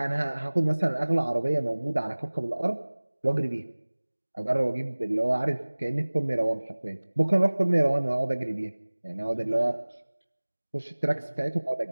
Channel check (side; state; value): both; inverted; correlation -1.00